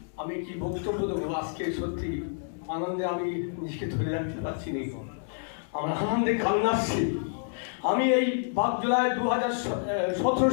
আমি কি বক্তব্য দেবো আজকে, সত্যি আনন্দে আমি নিজেকে ধরে রাখতে পারছি না, আমার আনন্দে কান্না আসছে। আমি এই 5 জুলাই 2017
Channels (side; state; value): right; silent; digital silence